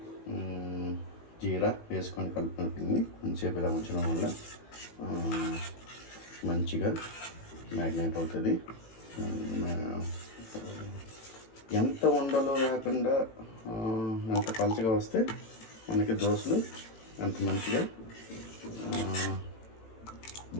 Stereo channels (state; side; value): late; right; 18 ms